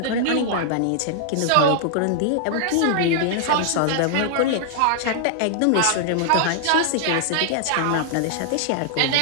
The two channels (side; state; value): both; different; correlation -0.01